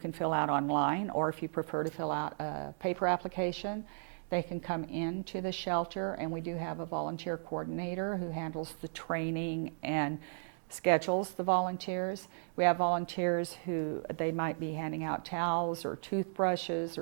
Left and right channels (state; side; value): silent; left; digital silence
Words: fill out online, or if you prefer to fill out a paper application, they can come into the shelter, and we do have a volunteer coordinator who handles the training and schedules the volunteers. We have volunteers who they might be handing out towels or toothbrushes